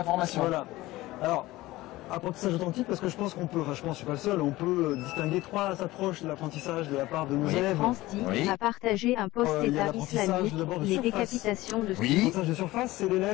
formation. Voilà. Alors, apprentissage authentique parce que je pense qu'on peut, enfin je pense, je suis pas le seul, on peut distinguer trois approches de l'apprentissage de la part de nos élèves. France dit a partagé un post État islamique, les décapitations de l'apprentissage de surface, c'est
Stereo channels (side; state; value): right; quieter; 18.2 dB